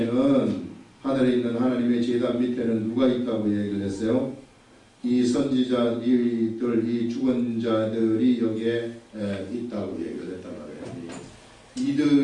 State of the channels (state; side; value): identical; both; correlation 1.00